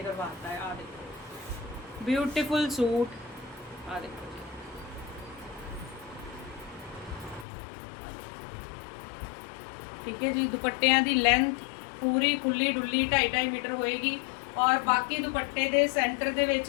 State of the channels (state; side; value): drops out; right; at 7.5 s